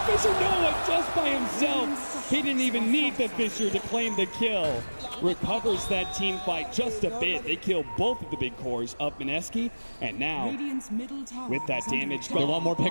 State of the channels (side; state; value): both; inverted; correlation -1.00